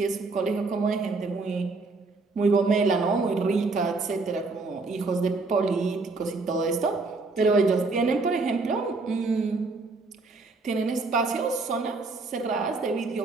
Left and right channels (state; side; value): quieter; left; 3.7 dB